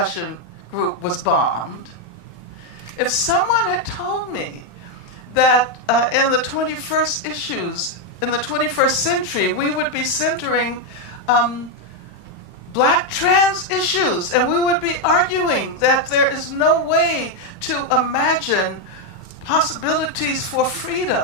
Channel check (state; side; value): late; right; 35 ms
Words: group was bombed, if someone had told me that in the 21st century, we would be centering black trans issues, and we would be arguing that there is no way to imagine possibilities for